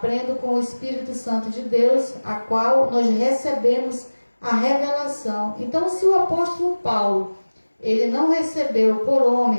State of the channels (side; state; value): both; inverted; correlation -1.00